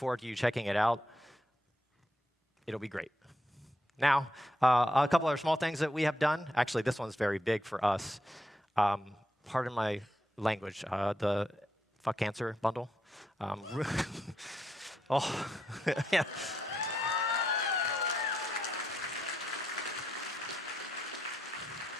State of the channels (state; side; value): normal; both; correlation 0.81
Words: to you checking it out. It'll be great. Now, a couple other small things that we have done. Actually, this one's very big for us. Pardon my language. The Fuck Cancer bundle. Oh, yeah.